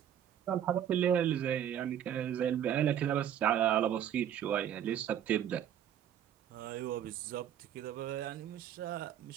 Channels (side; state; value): left; quieter; 10.1 dB